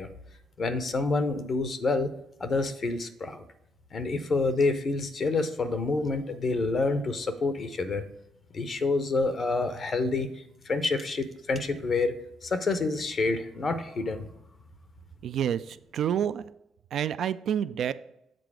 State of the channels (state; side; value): normal; both; correlation 0.72